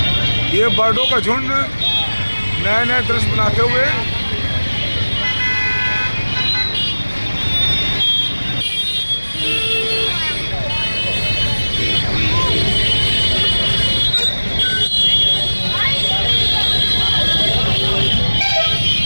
ये बर्डों का झुंड नए नए दृश्य बनाते हुए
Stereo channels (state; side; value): inverted; both; correlation -1.00